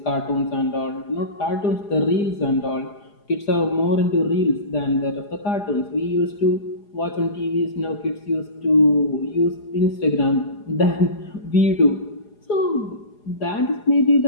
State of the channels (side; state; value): right; late; 4.8 ms